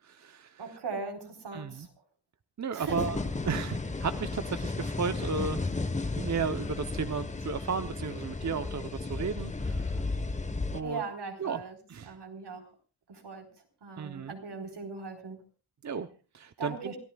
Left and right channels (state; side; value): normal; both; correlation 0.29